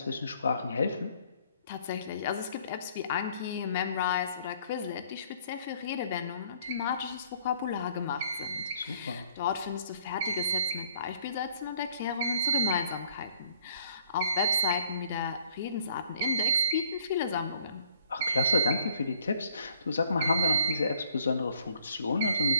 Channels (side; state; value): both; inverted; correlation -0.60